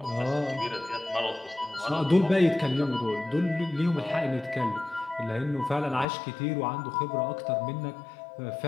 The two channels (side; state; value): right; drops out; at 6.1 s